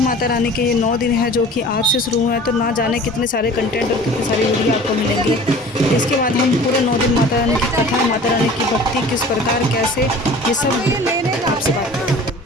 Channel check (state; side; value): normal; both; correlation 0.44